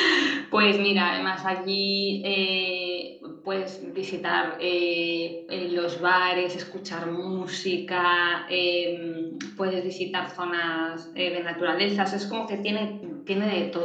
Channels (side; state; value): both; identical; correlation 1.00